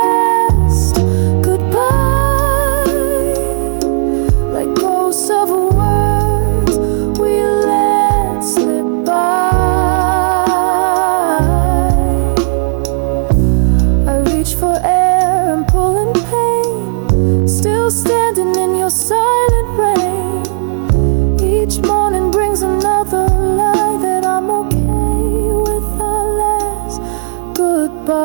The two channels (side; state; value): left; silent; digital silence